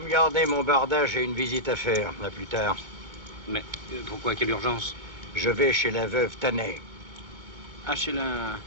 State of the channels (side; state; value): left; late; 2.2 ms